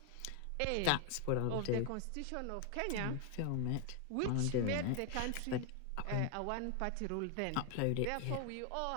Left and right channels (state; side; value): different; both; correlation 0.00